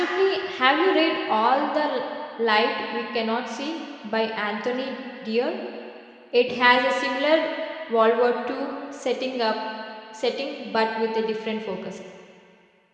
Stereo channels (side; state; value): both; identical; correlation 1.00